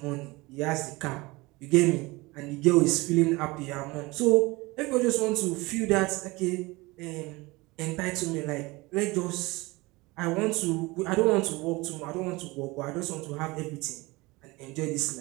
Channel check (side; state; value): left; quieter; 22.7 dB